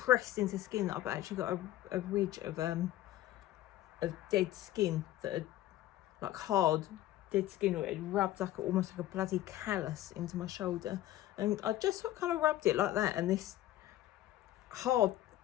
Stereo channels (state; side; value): quieter; right; 14.1 dB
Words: into skin that I've actually got a ridge of dead skin that had, like hard dead skin, where it rubbed like almost like a bloody callus into my shoulder, and I just sort of kind of rubbed it like that, and this hard